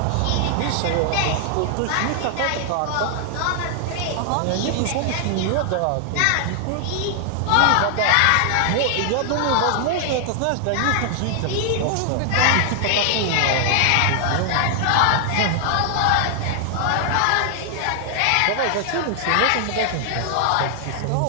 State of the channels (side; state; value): both; different; correlation 0.00